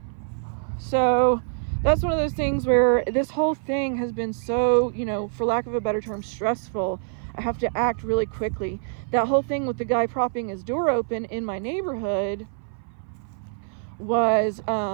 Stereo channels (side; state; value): left; silent; 58 dB below the other